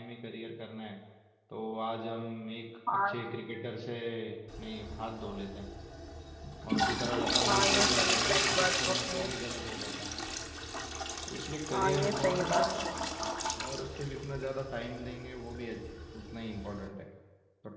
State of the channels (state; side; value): identical; both; correlation 1.00